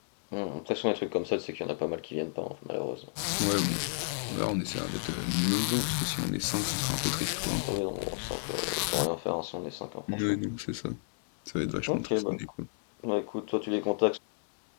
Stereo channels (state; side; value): silent; right; digital silence